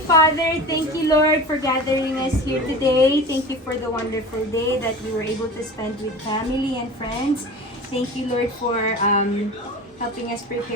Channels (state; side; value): normal; both; correlation 0.34